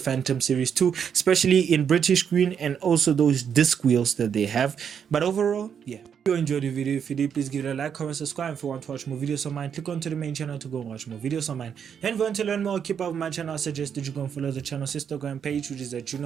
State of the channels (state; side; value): quieter; left; 7.7 dB